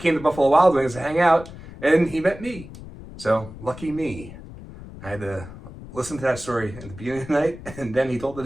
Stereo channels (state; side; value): noise; left; rumble, 15 dB below the sound